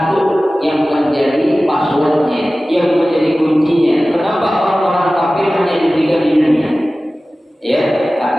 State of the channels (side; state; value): both; normal; correlation 0.96